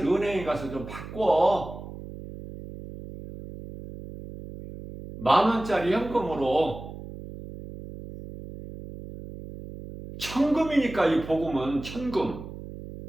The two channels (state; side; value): noise; right; hum, 12 dB below the sound